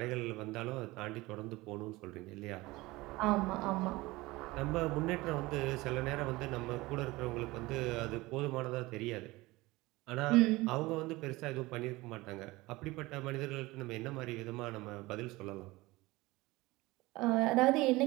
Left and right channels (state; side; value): quieter; left; 20.7 dB